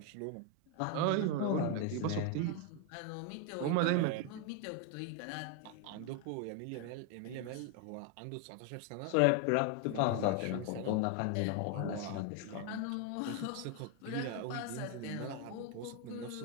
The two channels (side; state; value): both; different; correlation 0.01